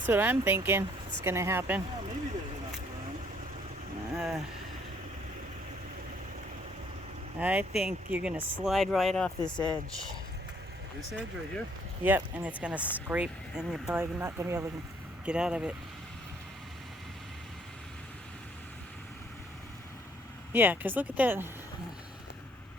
what I'm thinking. It's gonna happen. Well, maybe there's enough room. I think you're gonna slide right off this edge. This edge right here? Yep, and it's gonna scrape, and you're probably not gonna be able to get out of it. Yeah, because look at that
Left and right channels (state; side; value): normal; both; correlation 0.64